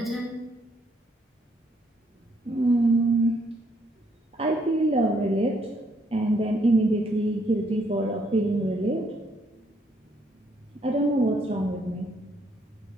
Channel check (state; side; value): normal; both; correlation 0.70